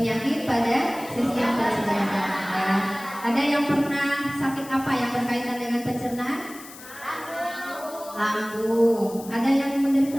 pada sistem pencernaan. Ya. Ada yang pernah sakit apa yang berkaitan dengan pencernaan? Lambung. Ada yang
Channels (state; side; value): noise; left; hiss, 17 dB below the sound